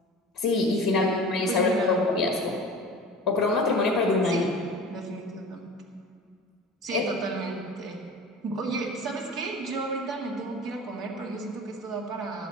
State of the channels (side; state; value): both; normal; correlation 0.38